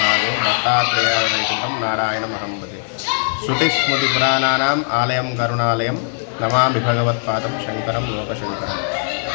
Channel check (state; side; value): silent; right; digital silence